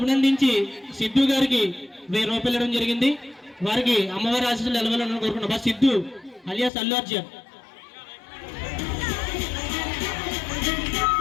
సిద్ధు గారికి 1000 రూపాయలు ఇవ్వడం జరిగింది. వారికి అమ్మవారి ఆశీస్సులు నిలవాలని కోరుకుంటున్నాం. సిద్ధు అలియాస్ అల్లు అర్జున్.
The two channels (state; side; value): drops out; right; at 6.7 s